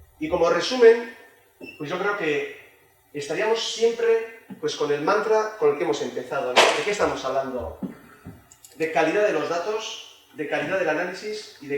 Y como resumen, pues yo creo que estaríamos siempre pues, con el mantra con el que hemos empezado, ¿no? ¿De qué estamos hablando? De calidad de los datos, de calidad del análisis y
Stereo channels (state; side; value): identical; both; correlation 1.00